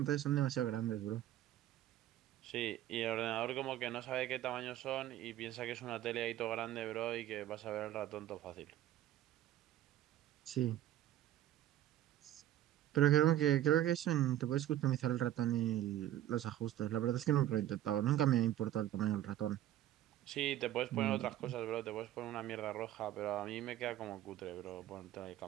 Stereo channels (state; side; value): quieter; left; 12.8 dB